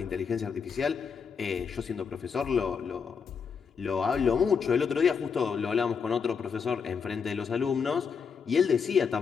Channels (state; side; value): quieter; right; 6.1 dB